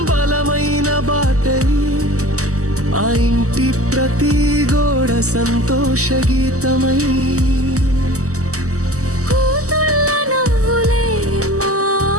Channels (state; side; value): late; left; 0.66 ms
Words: బలమైన బాటై, ఆ ఇంటి ప్రతి గోడ సంతోష గీతమై, కూతుళ్ళ నవ్వులే మా